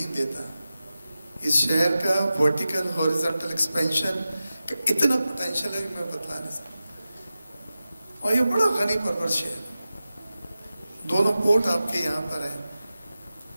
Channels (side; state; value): both; inverted; correlation -0.94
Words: देता। इस शहर का वर्टिकल हॉरिजॉन्टल एक्सपेंशन का इतना पोटेंशियल है कि मैं बता नहीं सकता। और ये बड़ा गनी परवर शहर। दोनों पोर्ट आपके यहाँ पर है,